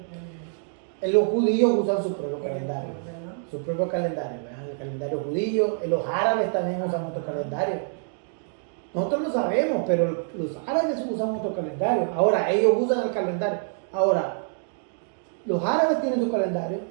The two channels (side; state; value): left; silent; digital silence